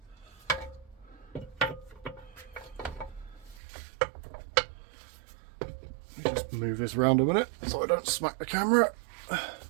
Let me just move this around a minute so I don't smack the camera.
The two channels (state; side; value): drops out; left; at 3.6 s